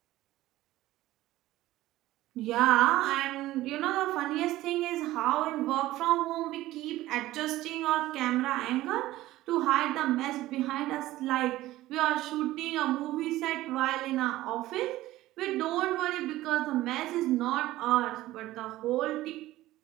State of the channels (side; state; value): left; quieter; 16.2 dB